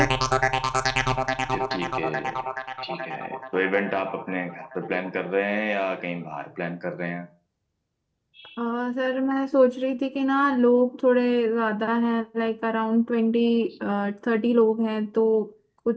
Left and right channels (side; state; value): both; identical; correlation 1.00